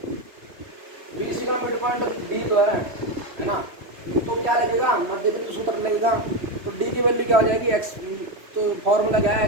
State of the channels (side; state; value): left; late; 3.1 ms